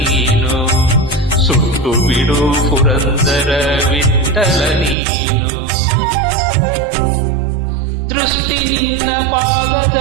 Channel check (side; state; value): left; drops out; at 5.0 s